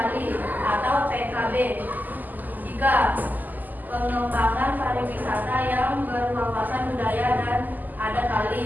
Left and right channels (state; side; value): late; left; 0.084 ms